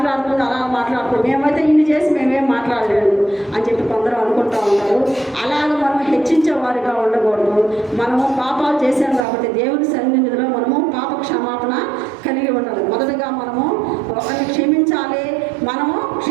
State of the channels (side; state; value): left; drops out; at 9.2 s